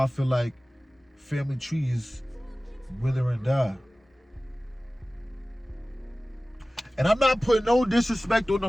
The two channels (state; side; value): normal; both; correlation 0.97